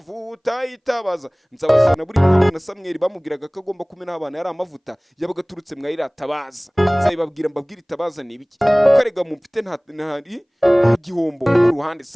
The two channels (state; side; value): identical; both; correlation 1.00